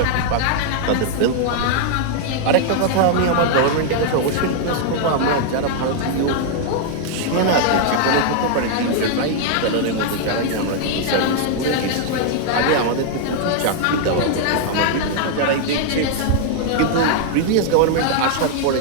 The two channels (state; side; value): different; both; correlation 0.00